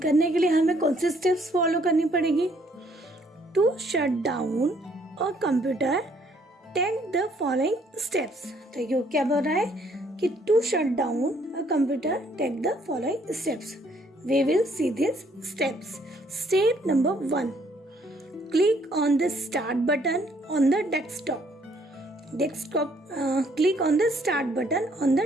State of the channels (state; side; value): normal; both; correlation 0.65